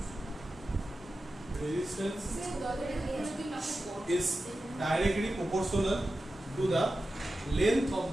Resistance is directly proportional to the length of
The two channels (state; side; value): normal; both; correlation 0.93